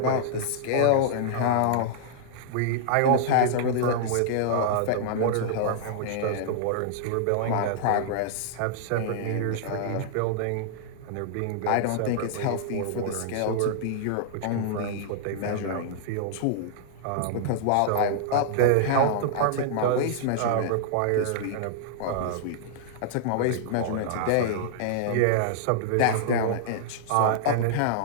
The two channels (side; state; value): both; different; correlation -0.01